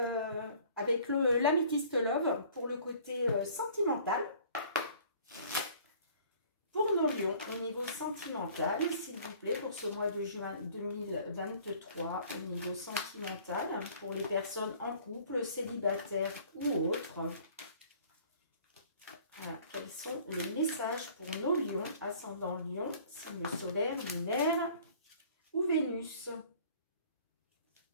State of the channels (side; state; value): both; inverted; correlation -0.52